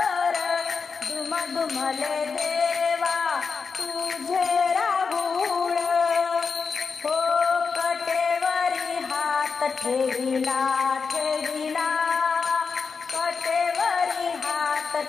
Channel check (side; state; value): right; quieter; 5.3 dB